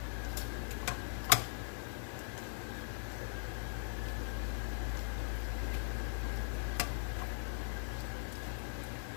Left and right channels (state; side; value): silent; right; 50 dB below the other